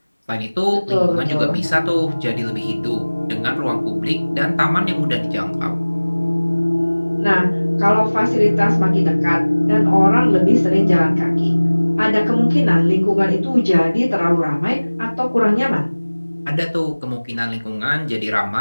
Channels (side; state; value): both; inverted; correlation -1.00